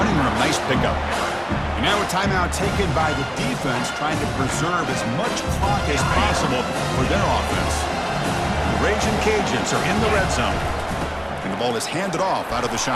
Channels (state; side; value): identical; both; correlation 1.00